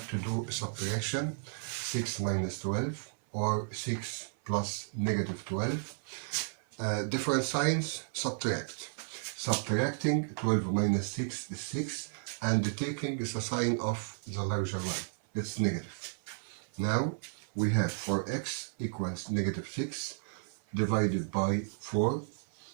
to do a subtraction. 6 minus 12, or 6 plus negative 12. Different signs, subtract. Subtracting 12 minus 6 is 6, and taking is a sign of the larger one. It's negative. Now we have 4x equals negative 6 divided by 4,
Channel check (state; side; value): silent; left; 56 dB below the other